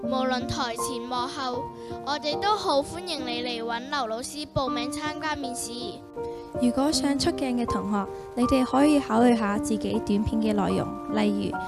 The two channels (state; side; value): identical; both; correlation 1.00